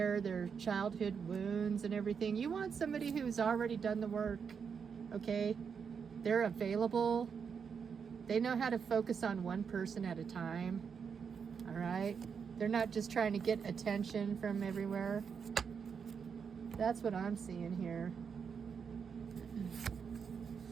their childhood wounds and everything. You want somebody who's already done the work, okay? They're available. They know how to focus on one person at a time, all right? They're not just trying to get attention from everywhere. That's what I'm seeing here.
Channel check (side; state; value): left; quieter; 6.4 dB